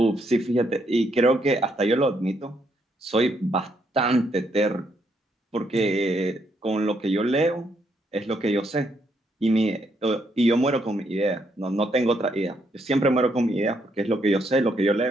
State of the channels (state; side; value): normal; both; correlation 0.74